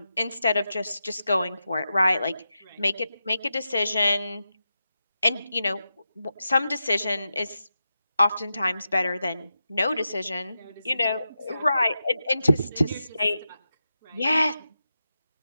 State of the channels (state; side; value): inverted; both; correlation -0.89